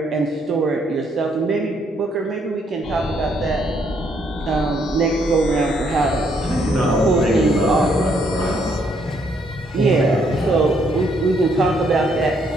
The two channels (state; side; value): normal; both; correlation 0.71